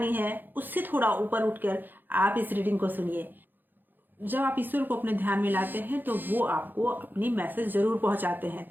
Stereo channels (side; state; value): left; late; 0.090 ms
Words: है उससे थोड़ा ऊपर उठकर आप इस रीडिंग को सुनिए। जब आप ईश्वर को अपने ध्यान में लाते हैं तो वो आपको अपनी मैसेज जरूर पहुंचाते हैं।